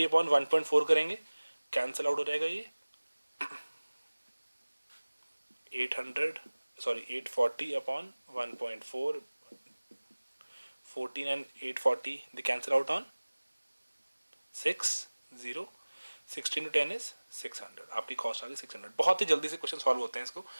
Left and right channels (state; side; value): inverted; both; correlation -1.00